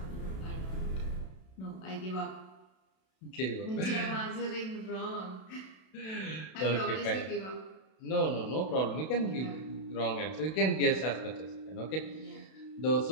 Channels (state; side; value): late; right; 32 ms